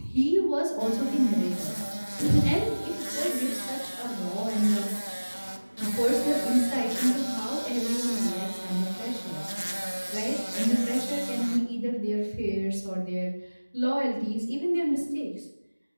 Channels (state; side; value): inverted; both; correlation -1.00